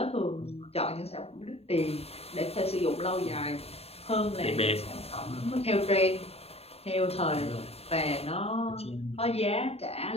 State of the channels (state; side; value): late; right; 0.29 ms